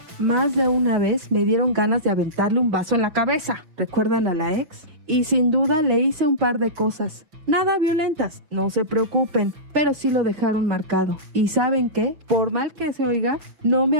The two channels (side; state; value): left; late; 6.0 ms